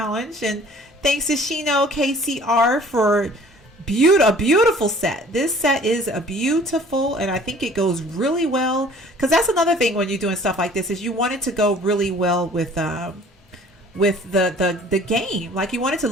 And thanks to Shino KCR for a beautiful set. This set is a beautiful, and I think it goes really well, because that's another thing when you're doing stuff like this, is you want it to go really well with the game. Like, you want it to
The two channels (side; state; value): both; normal; correlation 0.52